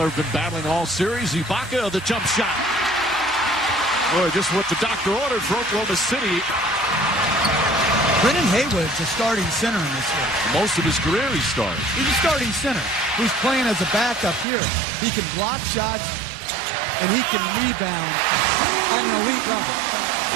have been battling all series. Ibaka, the jump shot. Boy, just what the doctor ordered for Oklahoma City. Brennan Haywood's a starting center in this game. Most of his career he started. He's a starting center who's playing as a backup here. He can block shots, and he can rebound at an elite level.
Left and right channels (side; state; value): left; drops out; at 14.5 s